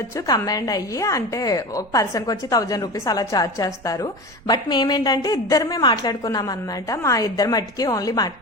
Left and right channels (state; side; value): noise; right; rumble, 25 dB below the sound